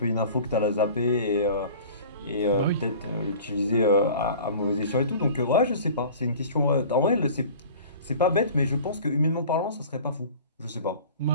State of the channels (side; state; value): both; inverted; correlation -0.43